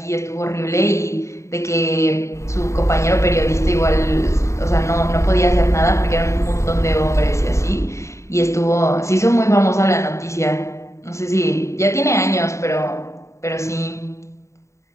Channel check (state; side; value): late; right; 0.14 ms